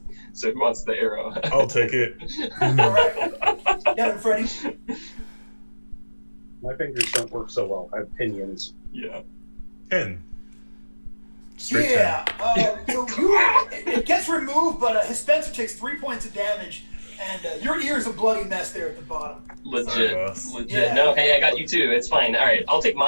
So who wants the arrow? I'll take it. All right. Get him, Freddy. My fingers don't work so well. I have pinions. Yeah. 10. Straight Yeah. So it gets removed, but his Spencer takes 3 points of damage, and your ear's a bloody mess there at the bottom. Legit. Sorry, boss. Legit. Yeah. No, hey, I got you too. It's fine. All right, I'll take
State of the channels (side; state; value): both; inverted; correlation -1.00